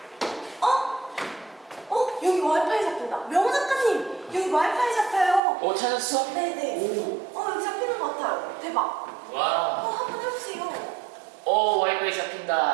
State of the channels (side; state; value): left; drops out; at 5.4 s